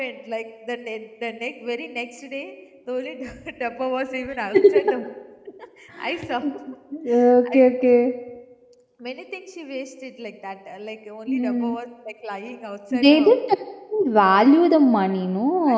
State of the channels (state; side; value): identical; both; correlation 1.00